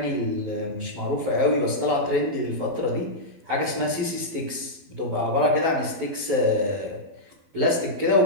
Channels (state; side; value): late; left; 12 ms